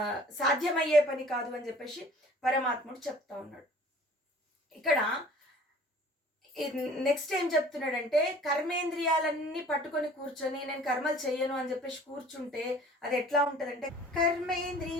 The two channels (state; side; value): normal; both; correlation 0.49